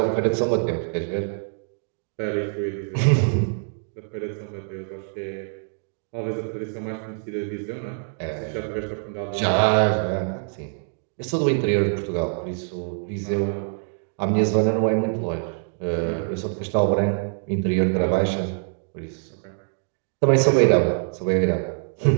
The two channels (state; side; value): silent; left; digital silence